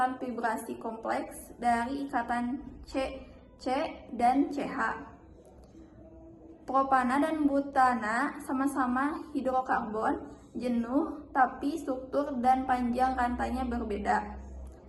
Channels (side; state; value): both; identical; correlation 1.00